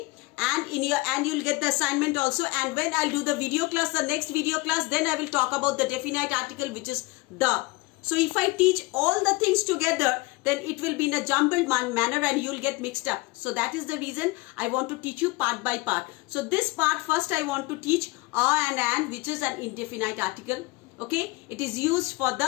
And you'll get the assignment also. And when I'll do the video class, the next video class, then I will talk about the definite article, which is the. So if I teach all the things together, then it will be in a jumbled manner and you'll get mixed up. So that is the reason I want to teach you part by part. So this part first I want to teach a and an, which is an indefinite article. Okay, it is used for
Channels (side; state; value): right; quieter; 23.6 dB